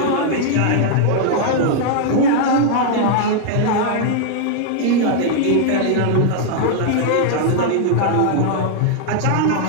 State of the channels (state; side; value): different; both; correlation 0.00